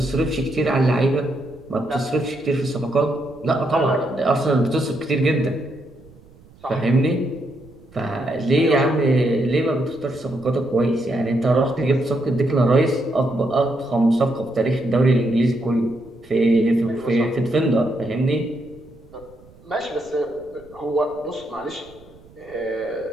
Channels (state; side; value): noise; right; rumble, 25 dB below the sound